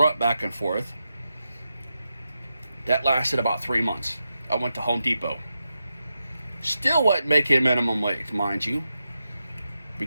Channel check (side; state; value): both; inverted; correlation -0.88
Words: back and forth. That lasted about 3 months. I went to Home Depot. Still wasn't making minimum wage, mind you,